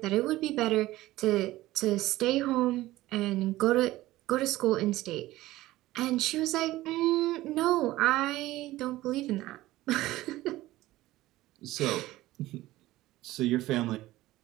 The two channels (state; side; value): quieter; left; 16.8 dB